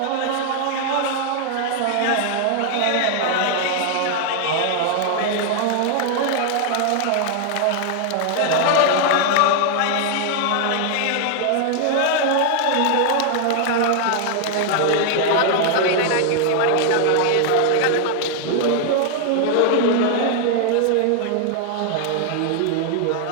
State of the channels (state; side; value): different; both; correlation 0.00